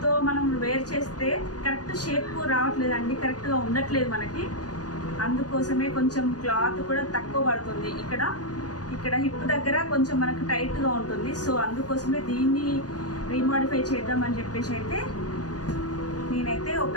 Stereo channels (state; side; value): late; right; 0.69 ms